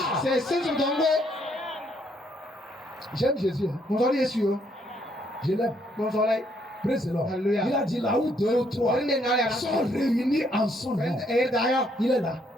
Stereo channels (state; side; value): normal; both; correlation 0.70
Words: J'aime Jésus. Je l'aime. Praise the Lord. Il a dit là où 2 ou 3 sont réunis en son nom. Il est là.